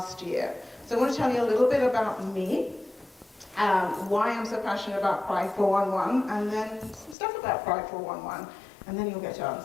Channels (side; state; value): right; drops out; at 7.2 s